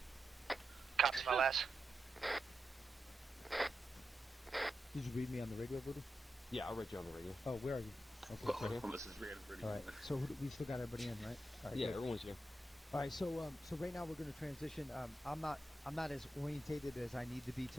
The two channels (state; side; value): normal; both; correlation 0.88